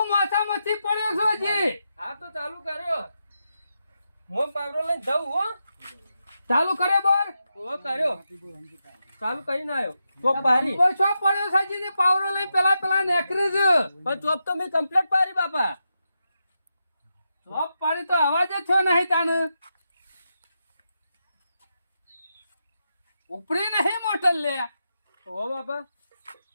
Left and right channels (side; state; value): both; inverted; correlation -0.87